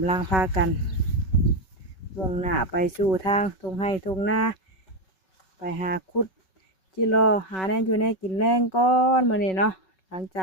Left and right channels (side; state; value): right; late; 5.4 ms